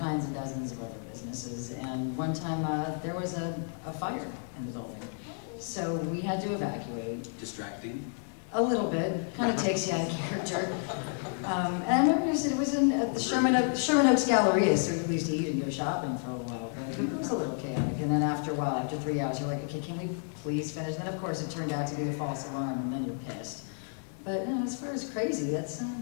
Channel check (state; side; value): silent; right; 57 dB below the other